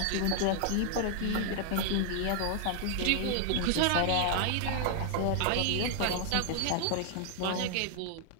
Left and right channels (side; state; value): both; different; correlation 0.00